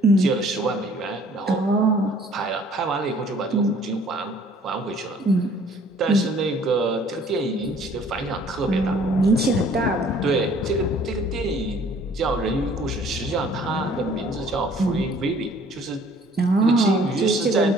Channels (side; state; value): both; normal; correlation 0.56